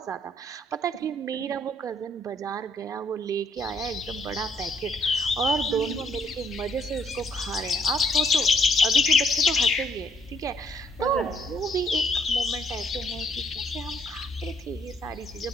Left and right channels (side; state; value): both; normal; correlation 0.68